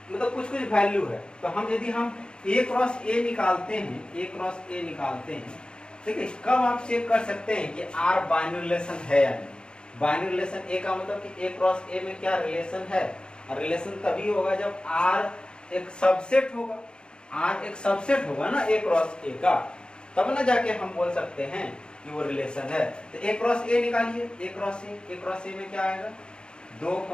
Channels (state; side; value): late; right; 0.051 ms